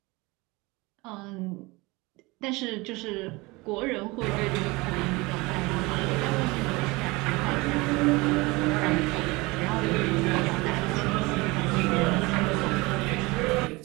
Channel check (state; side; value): quieter; left; 23.7 dB